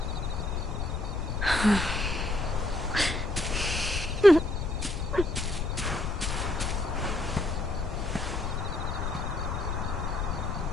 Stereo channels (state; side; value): noise; left; rumble, 2 dB below the sound